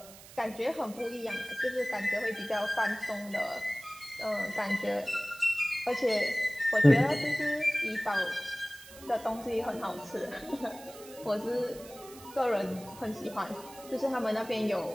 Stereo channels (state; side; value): noise; right; hiss, 18 dB below the sound